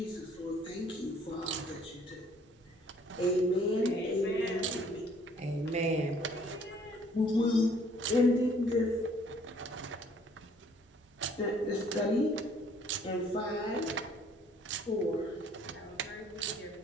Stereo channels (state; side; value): normal; both; correlation 0.60